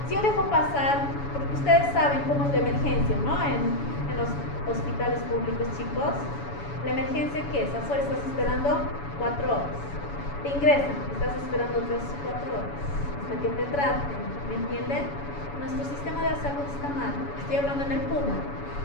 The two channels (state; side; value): late; right; 7.1 ms